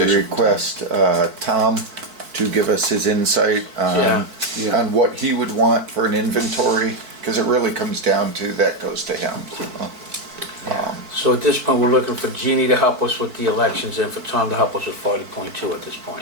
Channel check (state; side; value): late; left; 4.5 ms